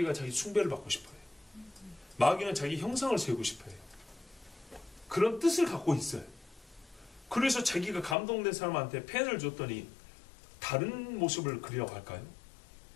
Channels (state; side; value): drops out; right; at 8.2 s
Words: 자기 숭배를 받고 싶어요. 마귀는 자기 형상을 세우고 싶어요. 그런 뜻을 갖고 있어요. 그래서 자기가 감동된 사람한테 펜을 줬더니 다른 모습을 그리라고 할까요?